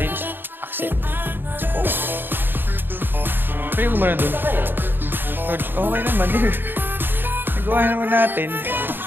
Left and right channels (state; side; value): late; left; 0.096 ms